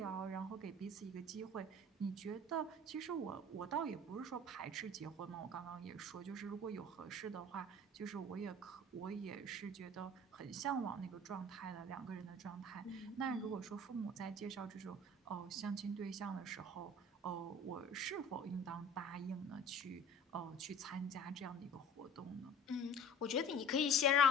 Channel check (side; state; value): both; normal; correlation 0.44